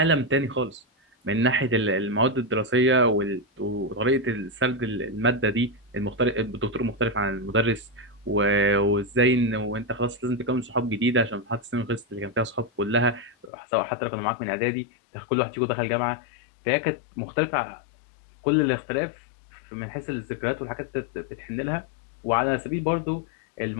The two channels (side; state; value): right; drops out; at 13.5 s